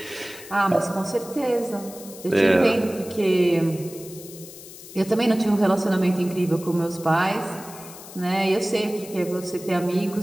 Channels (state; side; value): noise; left; hiss, 16 dB below the sound